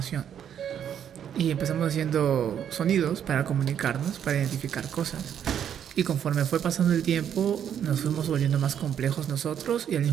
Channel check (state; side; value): quieter; left; 9.1 dB